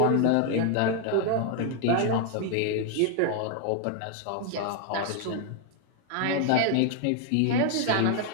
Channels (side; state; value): both; different; correlation 0.00